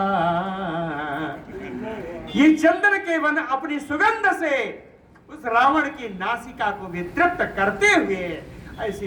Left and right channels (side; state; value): both; identical; correlation 1.00